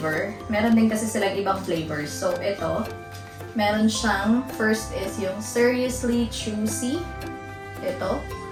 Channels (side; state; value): both; identical; correlation 1.00